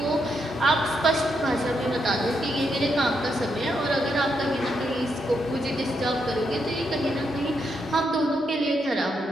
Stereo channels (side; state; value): both; normal; correlation 0.80